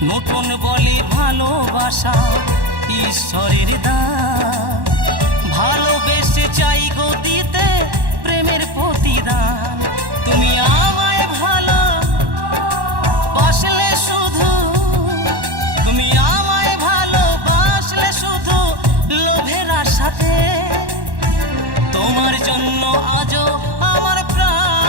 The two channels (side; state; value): left; late; 1.1 ms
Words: নতুন বলে ভালোবাসা ঈশ্বরের দান, ভালোবেসে চাই গো দিতে প্রেমের প্রতিদান। তুমি আমায় ভালো বাসলে শুধু, তুমি আমায় ভালোবাসলে শুধু লোভের আশাতে, তোমার জন্য আজও আমার